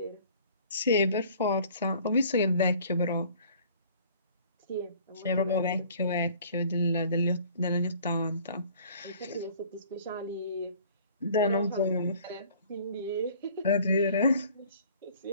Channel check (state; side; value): inverted; both; correlation -0.52